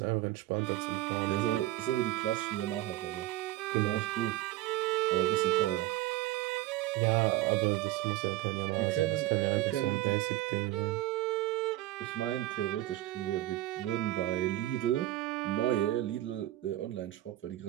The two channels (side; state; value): left; quieter; 16.0 dB